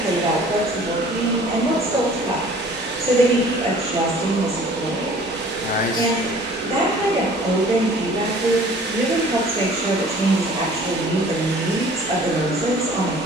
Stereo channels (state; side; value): normal; both; correlation 0.50